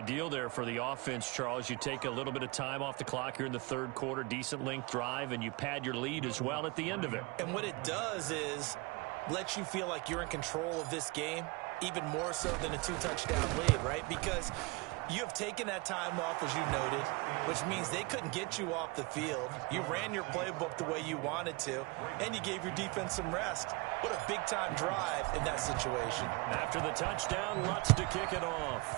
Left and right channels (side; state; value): left; quieter; 25.9 dB